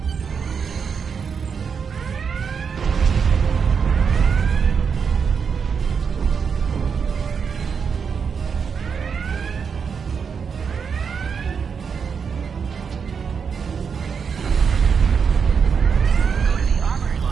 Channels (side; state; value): left; quieter; 6.3 dB